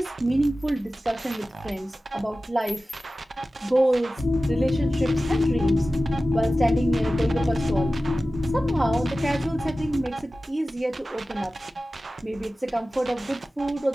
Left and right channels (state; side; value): normal; both; correlation 0.96